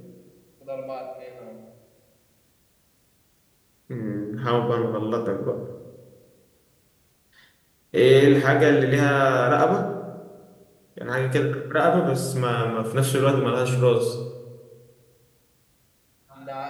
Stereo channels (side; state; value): both; identical; correlation 1.00